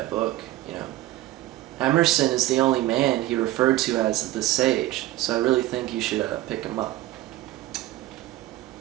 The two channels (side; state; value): left; quieter; 16.0 dB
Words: book, you know? Emerson is the only man he referred to as the sage, so I really think you should pick him up.